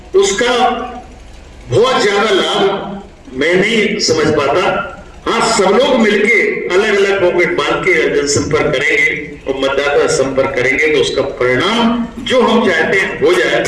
उसका बहुत ज्यादा लाभ मैं नहीं समझ पाता। हाँ, सब लोग मिलके अलग अलग पॉकेट बांध के जनसंपर्क करेंगे और मतदाता संपर्क करेंगे तो उसका परिणाम जो हम चाहते हैं हो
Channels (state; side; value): identical; both; correlation 1.00